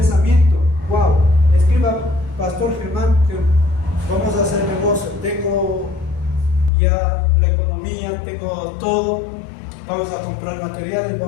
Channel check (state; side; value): drops out; right; at 6.7 s